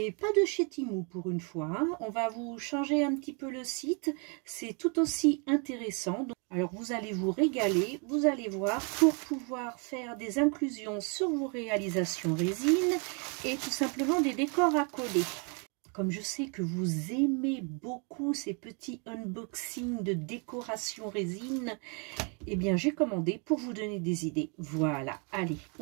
pas de chez Temu pour une fois, hein. On va vous changer un petit peu le site, c'est tout aussi intéressant. Alors vous allez vous régaler, vous allez voir, pour pouvoir faire des inclusions sur vos réalisations résine et tout simplement des décors à coller. Comme je sais que vous aimez beaucoup ces petits unboxings de décoration résine, eh bien j'ai commandé pour vous donner des idées. Voilà, allez,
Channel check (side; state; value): left; quieter; 35.8 dB